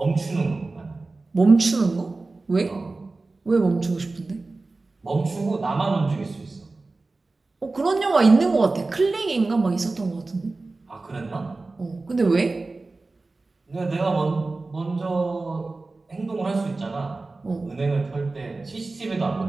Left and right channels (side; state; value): left; quieter; 3.5 dB